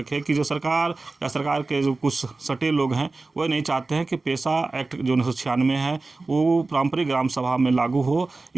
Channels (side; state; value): left; quieter; 3.5 dB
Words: कि जो सरकार या सरकार के जो कुछ सटे लोग हैं वो नहीं चाहते हैं कि पेशा एक्ट जो 1996 है वो पारंपरिक ग्राम सभा में लागू हो,